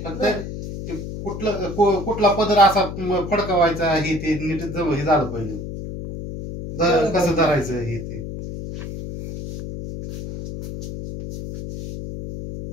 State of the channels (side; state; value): left; noise; hum, 8 dB below the sound